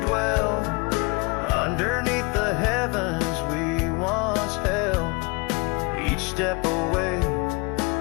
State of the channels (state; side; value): quieter; right; 28.9 dB